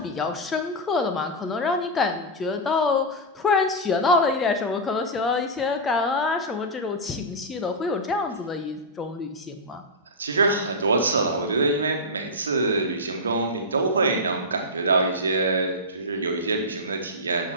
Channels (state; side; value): normal; both; correlation -0.08